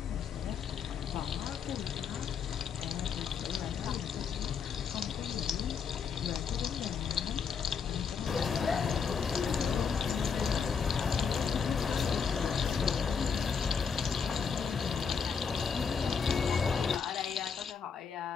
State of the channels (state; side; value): quieter; right; 6.3 dB